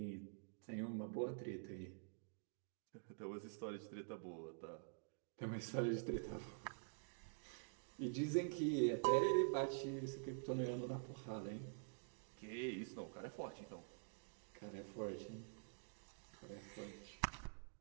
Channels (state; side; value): silent; left; digital silence